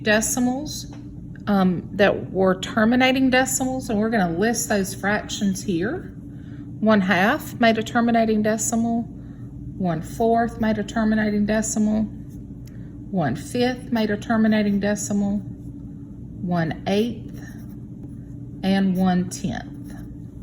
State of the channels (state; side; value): identical; both; correlation 1.00